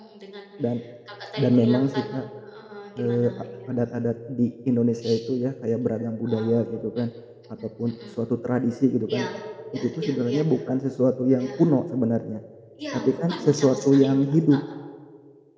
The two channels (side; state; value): both; identical; correlation 1.00